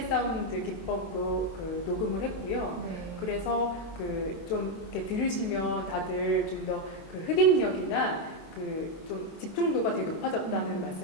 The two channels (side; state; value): right; late; 23 ms